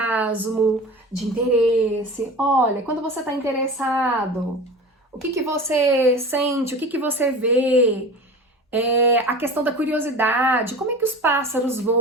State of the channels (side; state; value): both; normal; correlation 0.34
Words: de interesse. Olha, quando você está interessado, o que você sente, o que você vê? A questão da curiosidade, como é que os pássaros